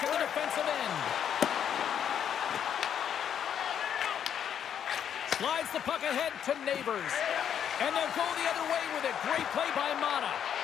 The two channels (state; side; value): quieter; right; 8.9 dB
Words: in the defensive end. Slides the puck ahead to Neighbors. And they'll go the other way with it. Great play by Mata.